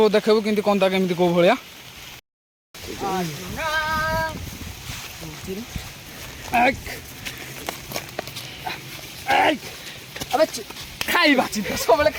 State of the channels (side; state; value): both; identical; correlation 1.00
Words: ଦେଖେଇବୁ କେମିତି କନ୍ଦା କେମିତି କୋଉ ଭଳିଆ। ଖାଇବା ଚିନ୍ତା ସବୁବେଳେ